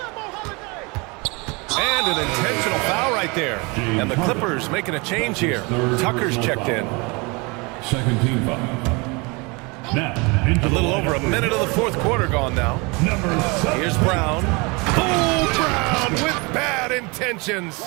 And an intentional foul right there. And the Clippers making a change here. Tucker's checked in. Second team foul. Now, a little over a minute of the fourth quarter gone now. Here's Brown. Oh, Brown with bad intentions.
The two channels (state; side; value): quieter; left; 28.0 dB